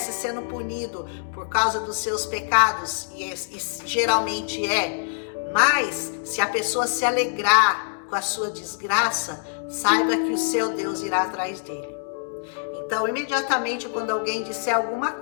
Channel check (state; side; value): silent; right; digital silence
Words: sendo punido por causa dos seus pecados, e geralmente mas se a pessoa se alegrar com a sua desgraça, saiba que o seu Deus irá atrás dele. Então, imediatamente, quando alguém disser alguma